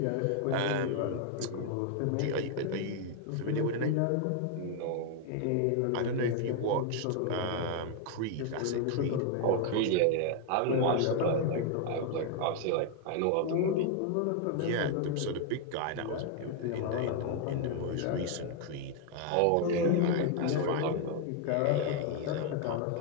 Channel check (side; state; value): both; different; correlation 0.00